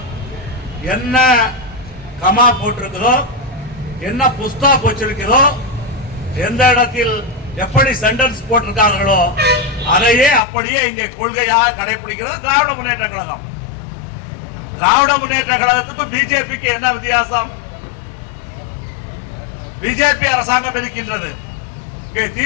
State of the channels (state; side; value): drops out; right; at 10.4 s